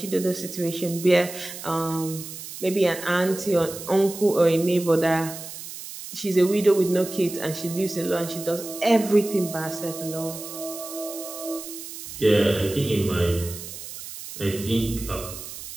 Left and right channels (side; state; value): right; noise; hiss, 11 dB below the sound